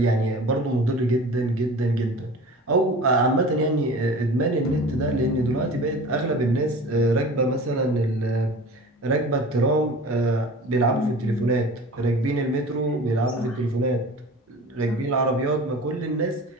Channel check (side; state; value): both; normal; correlation 0.38